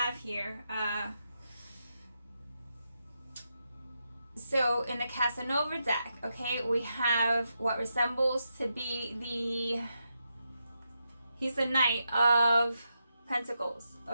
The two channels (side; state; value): both; inverted; correlation -0.85